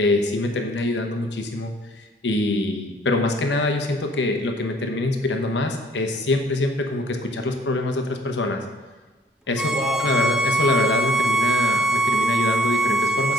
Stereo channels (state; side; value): normal; both; correlation 0.59